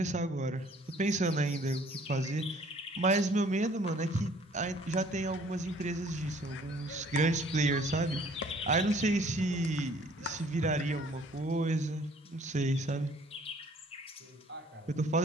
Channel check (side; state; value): both; normal; correlation 0.57